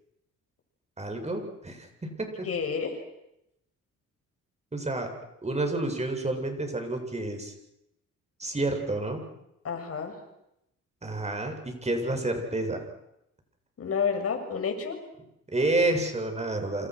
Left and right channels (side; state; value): both; normal; correlation 0.34